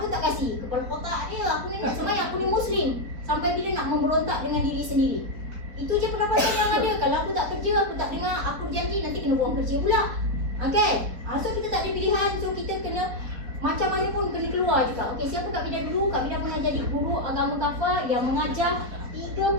tak kasih. Kepala kotak dia, aku ni nak sembahyang, aku ni Muslim. Sampai bila nak memberontak dengan diri sendiri. Itu je pendapatan yang ada. Kalau aku tak kerja, aku tak dengar, aku berjanji nanti kena buang kerja pula. Okay, so kita tak ada pilihan. So kita kena macam mana pun kena keluar juga. Okay, siapa Kak Vida dulu? Kak Vida pernah jadi guru agama kafah yang mengajar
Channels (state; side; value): late; left; 4.2 ms